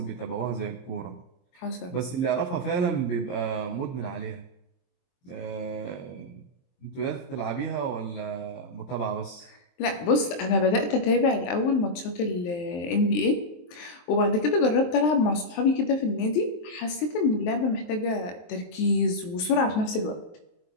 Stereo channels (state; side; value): late; right; 23 ms